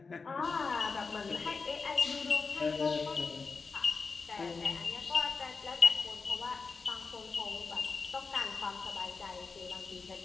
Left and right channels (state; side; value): quieter; right; 4.6 dB